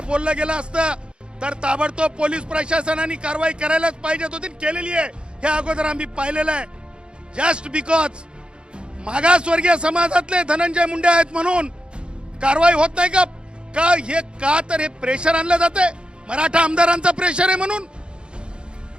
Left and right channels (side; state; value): left; late; 0.053 ms